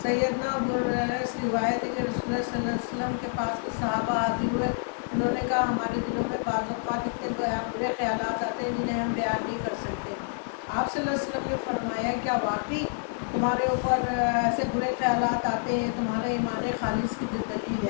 سیدنا ابو ہریرہ اس روایت ہے کہ رسول اللہ صلی اللہ علیہ وسلم کے پاس کے صحابہ حاضر ہوئے۔ انہوں نے کہا ہمارے دلوں میں بعض اوقات اتنے برے خیالات آتے ہیں جنہیں ہم بیان نہیں کر سکتے۔ آپ صلی اللہ علیہ وسلم نے فرمایا کیا واقعی تمہارے اوپر ایسے برے خیالات آتے ہیں؟ تمہارے ایمان خالص کی جو دلیل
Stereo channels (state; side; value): silent; right; digital silence